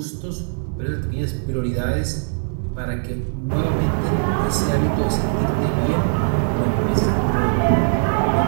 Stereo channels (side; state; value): left; silent; 65 dB below the other